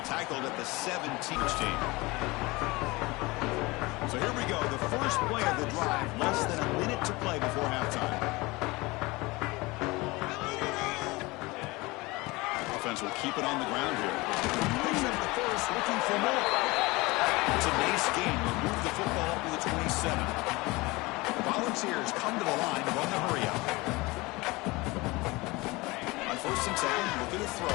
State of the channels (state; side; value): quieter; right; 22.9 dB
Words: tackled at the 17th team. So here we go, the first play of the drive, less than a minute to play before halftime. Offense will keep it on the ground here. Picks up the first, looking for more. It's a nice game. We'll move the football to the 27. The Volunteers come to the line to run the hurry up. On 1st and 10, looking to